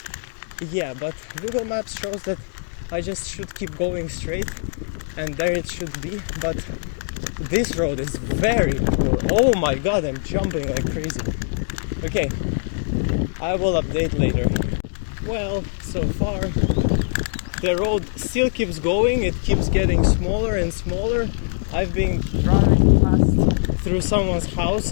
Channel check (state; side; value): silent; right; digital silence